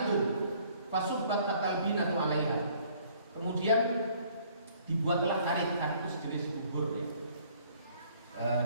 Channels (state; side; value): inverted; both; correlation -0.59